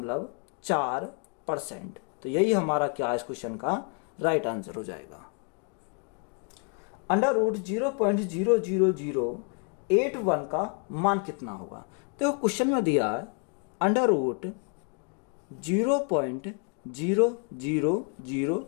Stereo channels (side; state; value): right; quieter; 39.0 dB